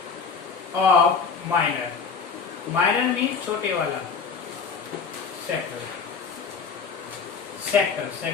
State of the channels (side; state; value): right; quieter; 5.4 dB